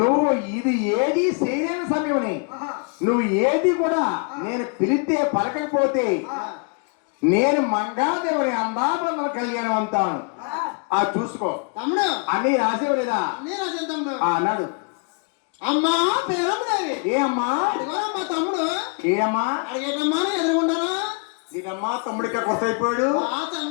నువ్వు ఇది ఏది చేయలేని సమయం, నువ్వు ఏది కూడా నేను పిలిస్తే పలకపోతే నేను మంగాదేవుని అందాబంధన కళ్యాణం అంటాను. ఆ చూసుకో తమ్ముడు. అన్ని రాసేవలేదా? అన్నీ రాశాను తమ్ముడు. అన్నాడు. అమ్మా పేరమ్మదేవి. ఏ అమ్మా? మా తమ్ముడు. ఏ అమ్మా? అడిగేటమ్మా ఎదురుకుంటానా? నీకమ్మా తమ్ముడికి కొత్త అయిపోయాడు.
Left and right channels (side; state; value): right; quieter; 36.7 dB